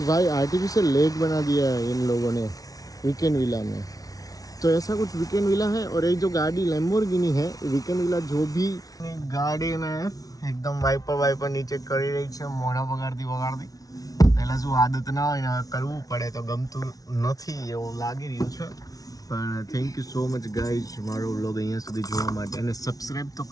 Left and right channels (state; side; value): late; right; 0.18 ms